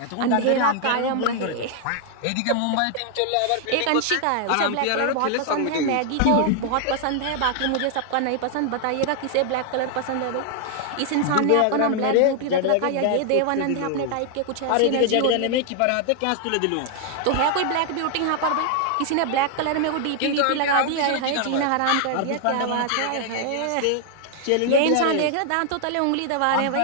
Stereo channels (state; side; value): different; both; correlation 0.00